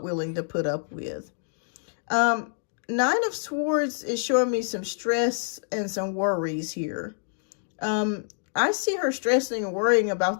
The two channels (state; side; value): silent; right; digital silence